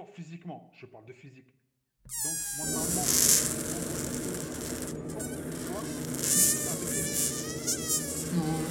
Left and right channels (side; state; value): both; identical; correlation 1.00